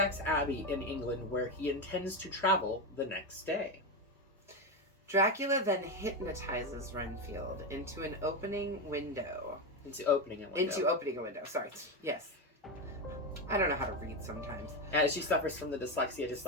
Abbey in England, where he intends to travel the next day. Dracula then hypnotizes Renfield into opening a window. Sorry. Yes. I don't know how to read sometimes. She suffers from the dyslexia just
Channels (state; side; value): normal; both; correlation 0.12